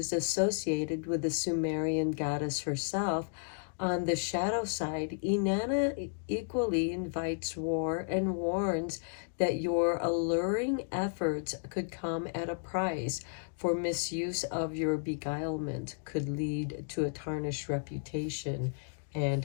associated with the Sumerian goddess herself, on the shadow side, Inanna equally invites war and warns that your alluring efforts could come at a price, for misuse of your beguilement could lead to a tarnished reputation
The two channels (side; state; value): right; silent; digital silence